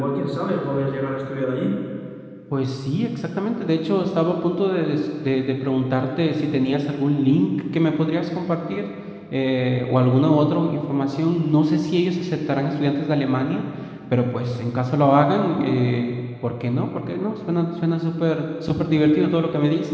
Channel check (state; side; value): identical; both; correlation 1.00